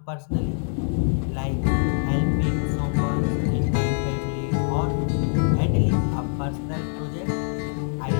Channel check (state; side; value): silent; right; 61 dB below the other